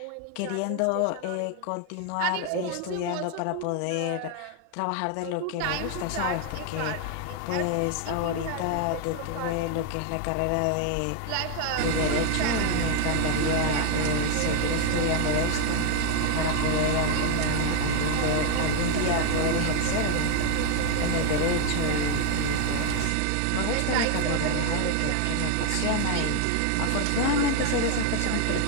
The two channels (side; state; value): both; different; correlation 0.00